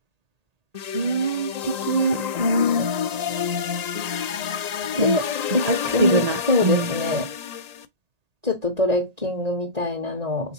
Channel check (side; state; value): left; late; 1.8 ms